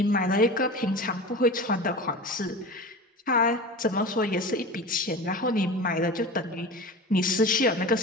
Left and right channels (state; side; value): normal; both; correlation 0.32